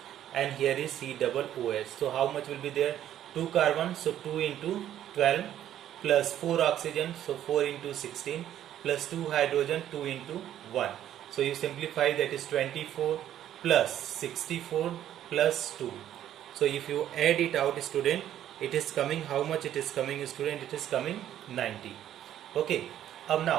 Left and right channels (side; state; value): left; quieter; 11.4 dB